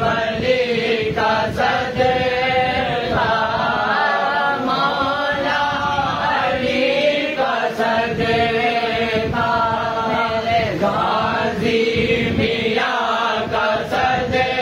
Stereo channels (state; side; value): identical; both; correlation 1.00